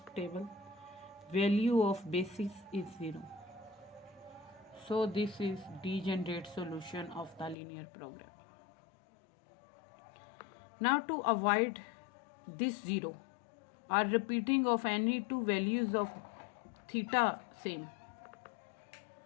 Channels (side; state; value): right; drops out; at 7.6 s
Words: table value of basis is 0. So this is degenerate solution of the linear problem. Now to avoid this 0 or repeating of any two values of theta same,